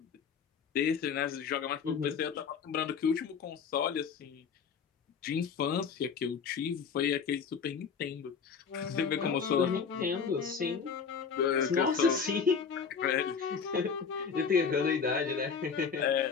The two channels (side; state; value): right; quieter; 6.2 dB